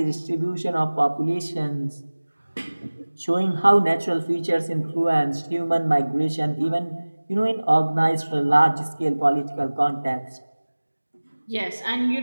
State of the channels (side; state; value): both; inverted; correlation -1.00